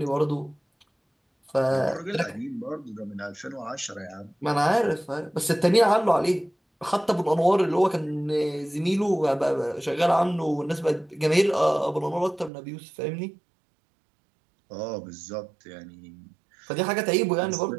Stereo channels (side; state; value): left; drops out; at 12.5 s